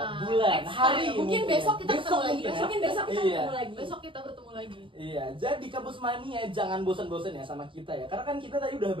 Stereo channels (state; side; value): late; left; 0.25 ms